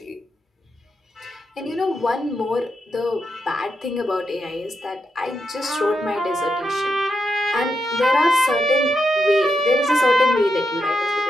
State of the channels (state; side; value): normal; both; correlation 0.85